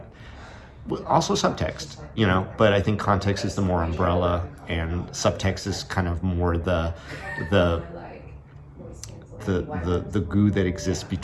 also subtext, but I think context is the more umbrella and subtext is kind of more the goo that exists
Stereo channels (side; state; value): both; identical; correlation 1.00